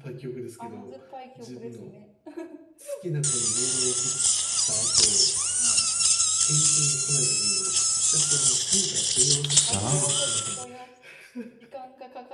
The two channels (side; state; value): both; identical; correlation 1.00